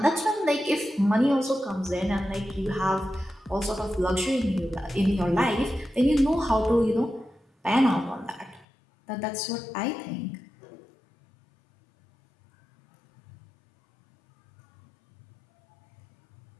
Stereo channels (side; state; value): right; drops out; at 8.7 s